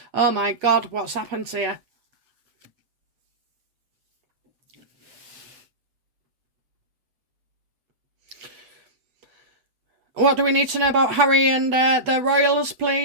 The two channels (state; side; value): late; left; 8.2 ms